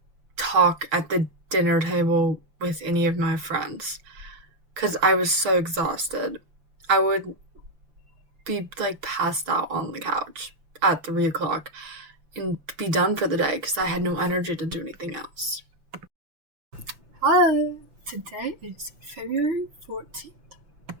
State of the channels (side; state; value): left; late; 6.4 ms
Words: talk at the dinner table with any of my friends because I was so exhausted. I would be like passed out on the couch at 3 o'clock and be done for the day because I had no energy to do anything else. Hi, today is February 14th.